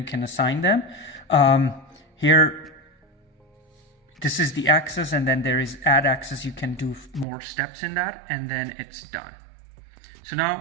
can assign them. Here, this is the access, and then there is add access. You can do more steps in that, and then it's done. So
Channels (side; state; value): left; drops out; at 7.2 s